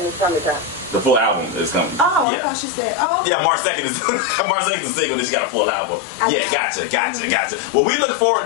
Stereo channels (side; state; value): right; drops out; at 2.2 s